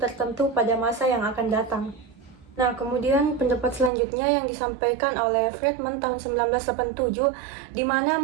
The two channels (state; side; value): drops out; left; at 3.9 s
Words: tertentu pada masa yang akan datang. Nah, kemudian pendapat selanjutnya yang disampaikan oleh Friedman tahun 1987, di mana